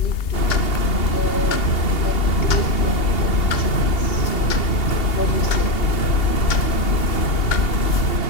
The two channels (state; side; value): late; right; 2.8 ms